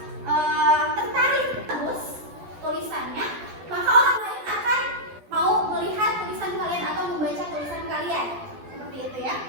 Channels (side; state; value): left; late; 12 ms